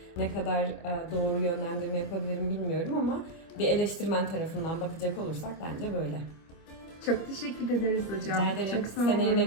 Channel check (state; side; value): late; right; 25 ms